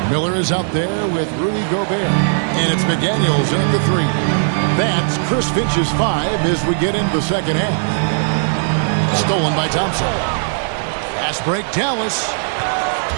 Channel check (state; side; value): silent; left; digital silence